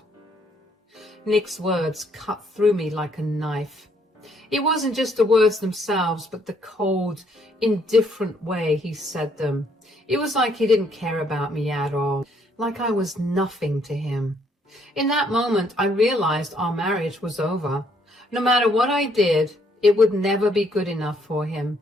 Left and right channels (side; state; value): both; normal; correlation 0.68